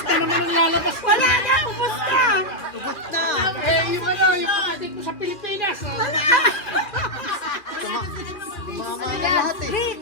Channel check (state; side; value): late; right; 2.4 ms